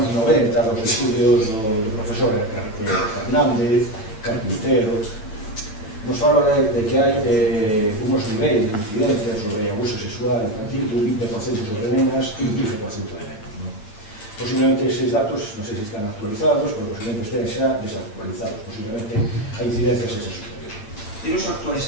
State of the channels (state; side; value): late; right; 9.0 ms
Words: 90 dos estudios do profesor Hernández, Carpintero, nos fala de que hai unos niveis de incidencia sobre abuso sexual infantil de un 20% sobre nenas e un 15% de nenos. Posiblemente eses datos, non sei se están actualizados, pero posiblemente estén xa desactualizados. Posiblemente a incidencia sexa superior. Teño o actual